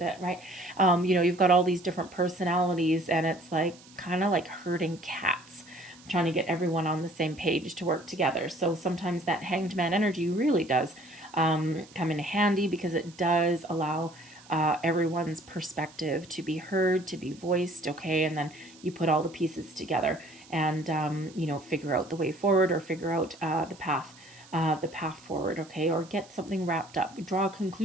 right? You know, you've got all these different personalities, and it's like kind of like herding cats, trying to get everyone on the same page to work together. So sometimes that hanged man energy really does come in handy, because it does allow everyone's perspective to be heard, to be voiced, okay? And then you put all the pieces together and, you know, figure out the way forward, or figure out the path forward, okay? Or get something wrapped up, draw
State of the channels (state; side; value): noise; right; hiss, 23 dB below the sound